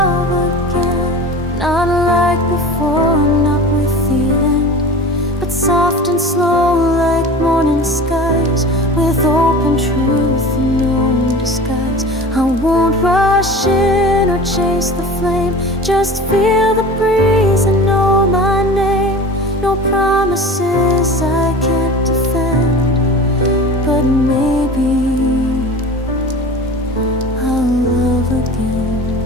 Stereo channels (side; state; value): both; normal; correlation 0.37